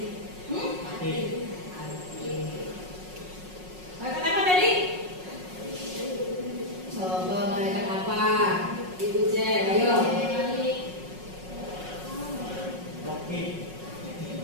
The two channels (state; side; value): late; left; 5.5 ms